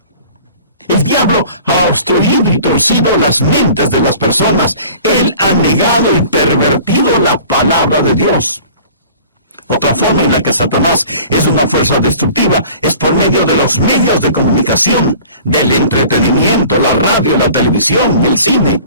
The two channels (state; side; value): inverted; both; correlation -0.46